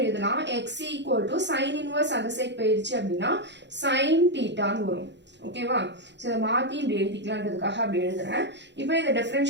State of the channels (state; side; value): late; left; 0.52 ms